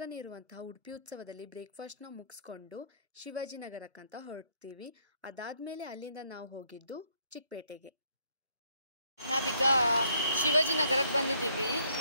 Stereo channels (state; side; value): inverted; both; correlation -0.68